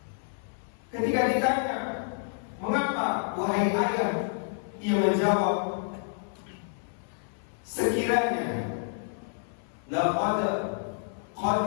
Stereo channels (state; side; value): silent; right; 57 dB below the other